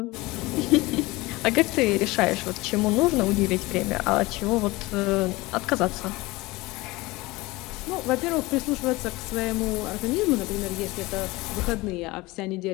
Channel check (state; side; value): quieter; right; 21.4 dB